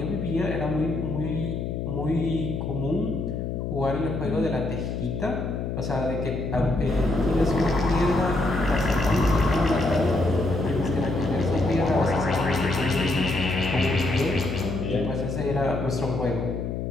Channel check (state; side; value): noise; left; hum, 3 dB below the sound